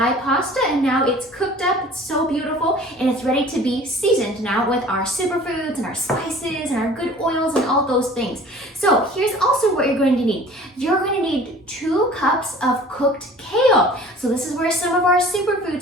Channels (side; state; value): both; normal; correlation 0.47